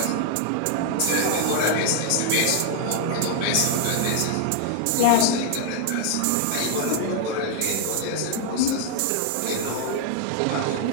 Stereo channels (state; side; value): different; both; correlation 0.00